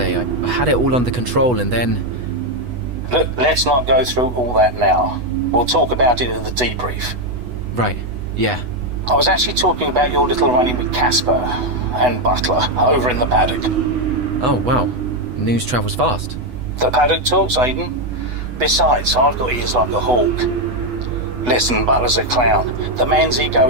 I had it all under control and then... Look, let's not go through all that now. We'll talk about it at the debrief. Right, yeah. I was actually talking about your little run-in with Casper and Butler over in the paddock. Oh, wow. News travels fast. The paddock talks, Aiden. Besides, I've got ears like a hawk. Listen, Butler's a clown. The man's ego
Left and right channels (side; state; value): left; late; 8.1 ms